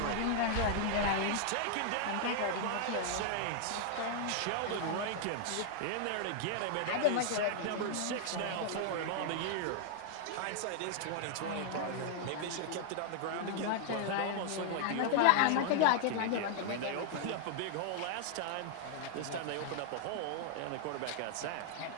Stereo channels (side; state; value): both; different; correlation -0.01